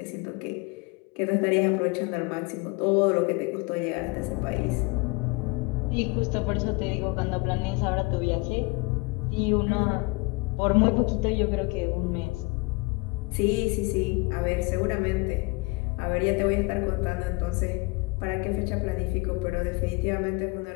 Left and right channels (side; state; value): right; quieter; 26.7 dB